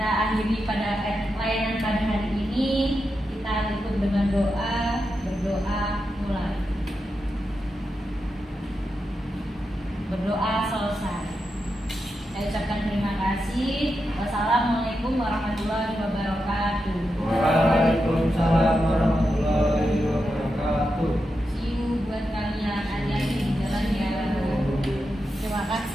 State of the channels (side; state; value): both; normal; correlation 0.88